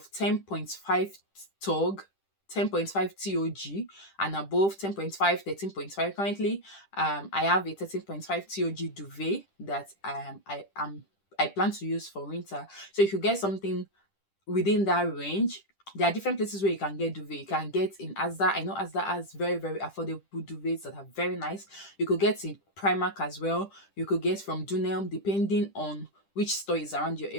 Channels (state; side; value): late; right; 10 ms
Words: 10.5 tog, 10.5 TOG, and above 10.5, 13.5. Currently, I have a 13.5 TOG duvet that I plan to use for winter. So if you get something within that range, there are different places where you can get duvet. You can get in Asda. I know Asda has very, very affordable duvets that are very nice. You could get in Primark as well. You could get from Dunelm, depending on which store is around your